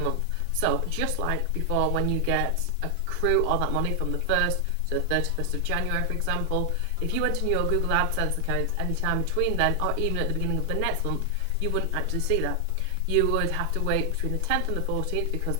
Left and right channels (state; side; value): different; both; correlation 0.00